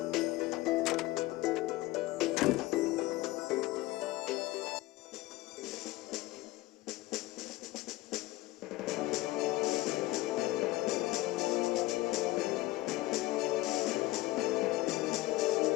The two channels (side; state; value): right; quieter; 18.5 dB